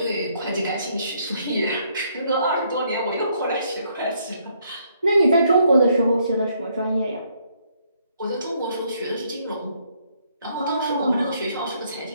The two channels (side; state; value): both; inverted; correlation -0.70